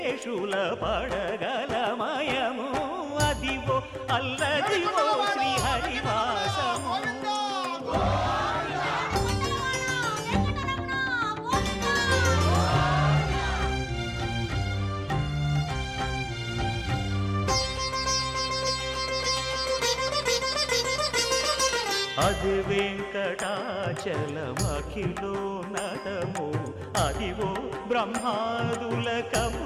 పడగలమయము అదివో అల్లదివో శ్రీహరివాసము అది వెంకటాచలమఖిలోన్నతము అదివో బ్రహ్మాదుల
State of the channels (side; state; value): both; identical; correlation 1.00